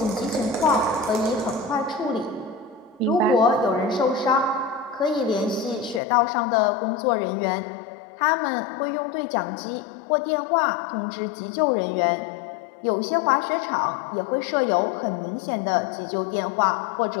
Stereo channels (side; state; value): right; drops out; at 6.0 s